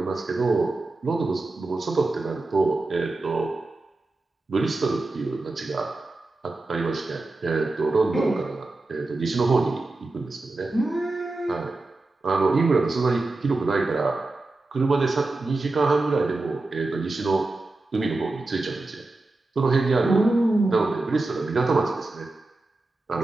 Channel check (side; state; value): left; quieter; 3.1 dB